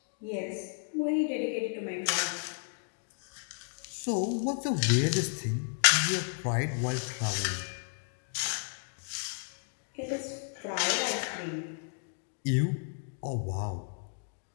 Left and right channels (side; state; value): right; silent; 56 dB below the other